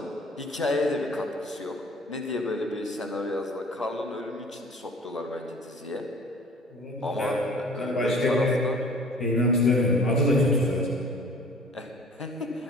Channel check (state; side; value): normal; both; correlation 0.49